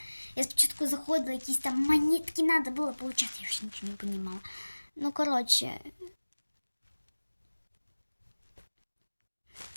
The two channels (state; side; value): inverted; both; correlation -1.00